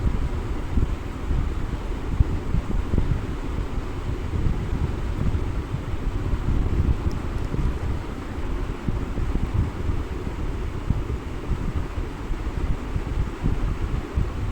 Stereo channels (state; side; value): identical; both; correlation 1.00